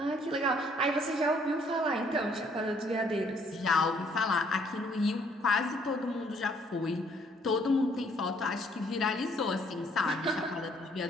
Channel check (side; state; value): both; normal; correlation 0.65